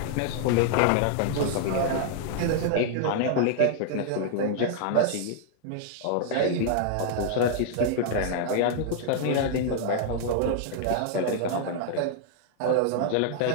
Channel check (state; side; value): different; both; correlation -0.01